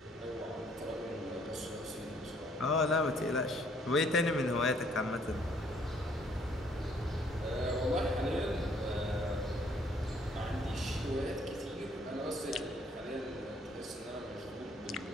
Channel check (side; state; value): both; normal; correlation 0.63